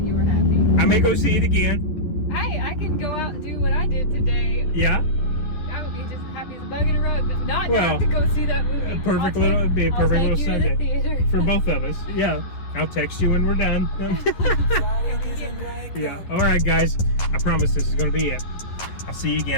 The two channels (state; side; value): late; right; 11 ms